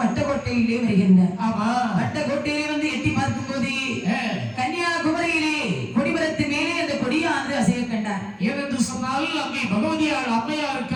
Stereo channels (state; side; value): identical; both; correlation 1.00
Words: வட்டக்கோட்டையிலே வருகின்றார். வட்டக்கோட்டையிலே வந்து எட்டி பார்க்கும் போது கன்னியாகுமரியிலே கொடிமரத்து மேலே அந்த கொடியானது அசைய கண்டார். ஏனென்று சொன்னால் அங்கே பகவதியார் அம்மையாருக்கு